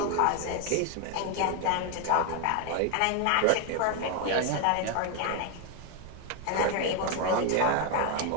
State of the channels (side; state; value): both; different; correlation 0.01